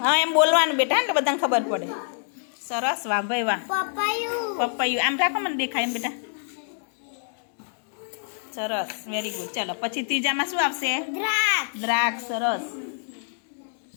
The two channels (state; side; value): silent; right; 61 dB below the other